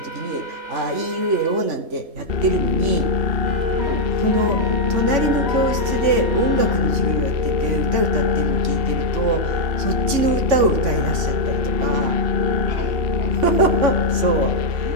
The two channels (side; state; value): left; late; 3.5 ms